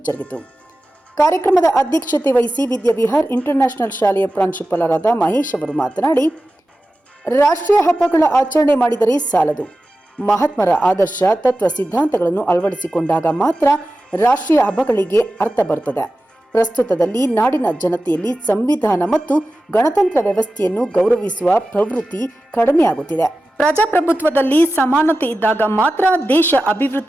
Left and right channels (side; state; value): both; normal; correlation 0.94